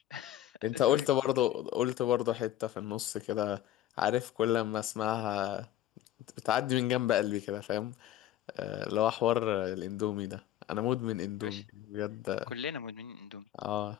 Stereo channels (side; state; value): right; quieter; 12.6 dB